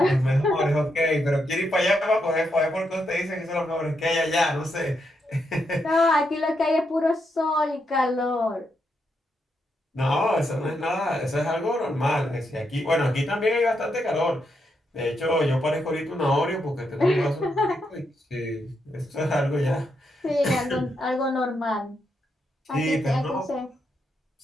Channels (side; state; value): both; normal; correlation 0.81